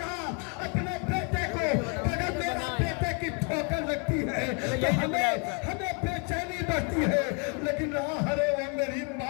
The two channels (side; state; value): right; quieter; 34.9 dB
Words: اپنے بیٹے کو اگر میرا بیٹے کی ٹھوکر لگتی ہے تو ہمیں بے چینی بڑھتی ہے لیکن ارے وہ میری